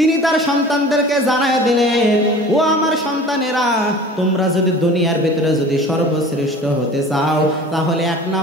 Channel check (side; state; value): both; normal; correlation 0.42